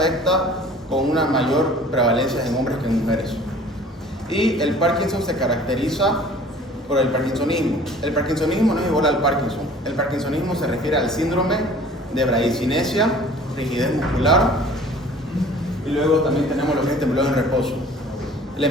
con una mayor prevalencia en hombres que en mujeres. Y el Parkinson se caracteriza por el parkinsonismo. El parkinsonismo no es igual al Parkinson. El parkinsonismo se refiere al síndrome de bradicinesia, rigidez muscular, y luego también tenemos lo que es temblor en reposo. La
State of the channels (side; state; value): both; normal; correlation 0.48